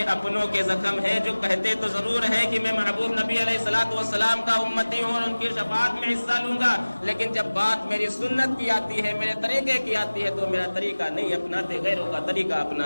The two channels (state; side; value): inverted; both; correlation -1.00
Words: اپنوں کے زخم ہے, جو کہتے تو ضرور ہے کہ میں محبوب نبی علیہ الصلوۃ والسلام کا امتی ہوں اور ان کی شفاعت میں حصہ لوں گا, لیکن جب بات میری سنت کی آتی ہے, میرے طریقے کی آتی ہے, تو میرا طریقہ نہیں اپناتے, غیروں کا طریقہ